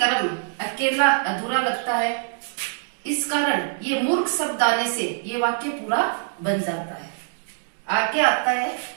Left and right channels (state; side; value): silent; left; digital silence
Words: अकेला अधूरा लगता है। इस कारण ये मूर्ख शब्द आने से ये वाक्य पूरा बन जाता है। आगे आता है